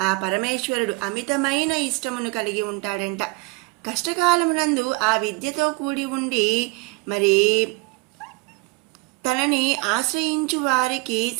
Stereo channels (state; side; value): quieter; left; 26.3 dB